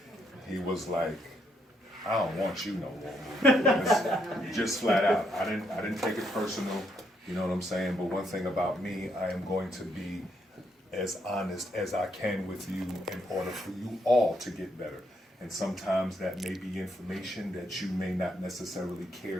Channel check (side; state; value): both; normal; correlation 0.75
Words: He was like, I don't want you no more. Just flat out. I didn't take it personal, you know what I'm saying? But one thing about me, I am going to be as honest as I can with you in order for you all to get better. And sometimes that may be information that you may not necessarily care